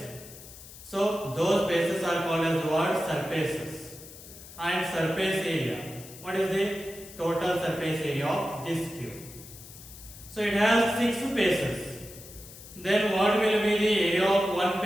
So those faces are called as the word surfaces. And surface area, what is the total surface area of this cube? So it has 6 faces. Then what will be the area of one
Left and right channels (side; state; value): left; noise; hiss, 17 dB below the sound